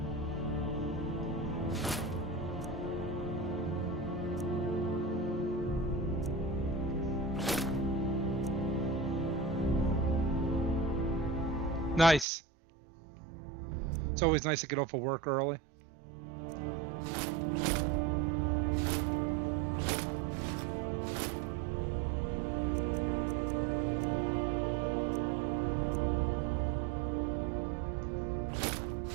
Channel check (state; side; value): drops out; left; at 12.2 s